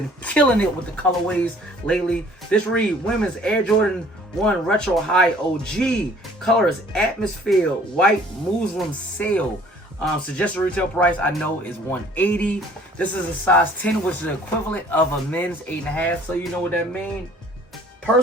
killing it with the colorways lately. This read women's Air Jordan 1 Retro High OG. Color is Atmosphere White Muslim Sail. Suggested retail price I know is $180. This is a size 10, which is the equivalent of a men's 8.5. So you know what that means.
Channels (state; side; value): normal; both; correlation 0.55